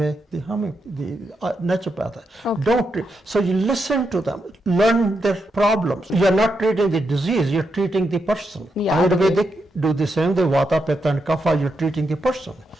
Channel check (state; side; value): normal; both; correlation 0.83